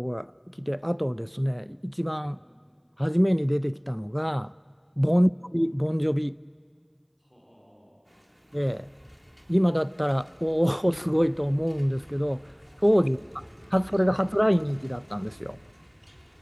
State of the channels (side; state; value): both; identical; correlation 1.00